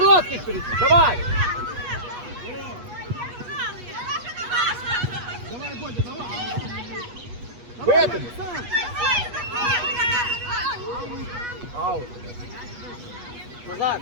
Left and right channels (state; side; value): late; left; 8.3 ms